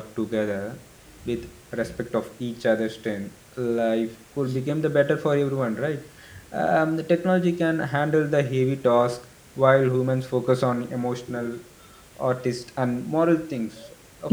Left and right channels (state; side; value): identical; both; correlation 1.00